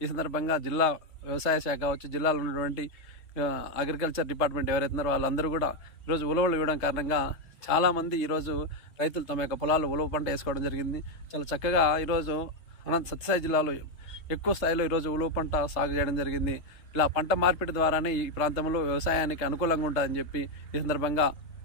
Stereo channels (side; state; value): right; late; 3.3 ms